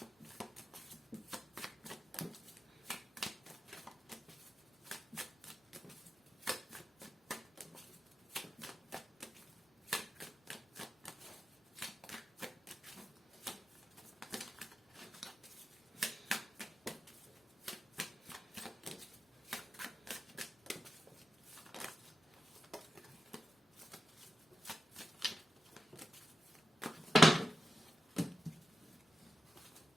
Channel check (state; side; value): normal; both; correlation 0.90